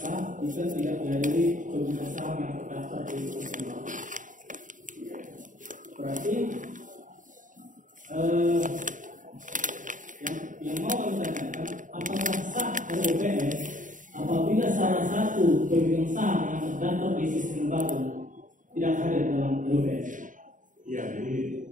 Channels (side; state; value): left; late; 0.38 ms